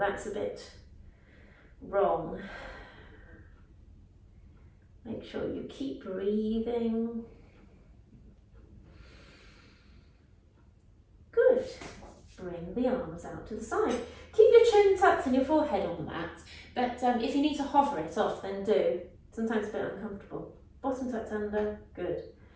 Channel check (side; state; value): both; identical; correlation 1.00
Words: a bit wrong. Make sure you keep breathing. Good. Bring the arms out to the side. Keep your chin tucked and your forehead on the mat. But if you need to hover it off, then do. Sometimes a bit uncomfortable. Bottom tucked under. Good.